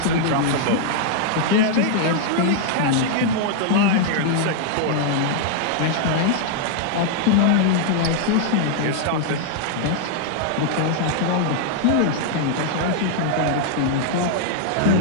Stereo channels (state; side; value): different; both; correlation 0.00